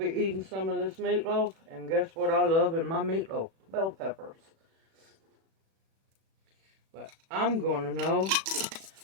eating some of this meatloaf. And guess what I love in my meatloaf? Bell peppers. But I'm going to know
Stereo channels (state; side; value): late; left; 37 ms